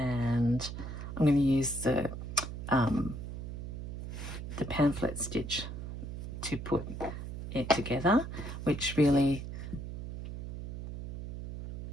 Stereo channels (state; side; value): noise; right; hum, 7 dB below the sound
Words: I'm going to use the pamphlet stitch to put it together, which really,